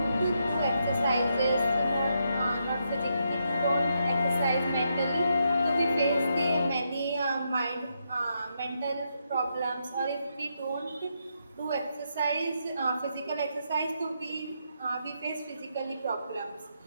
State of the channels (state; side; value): inverted; both; correlation -0.80